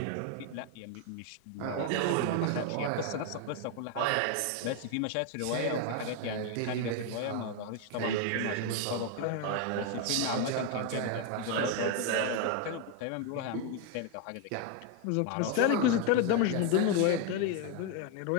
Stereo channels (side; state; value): both; different; correlation 0.01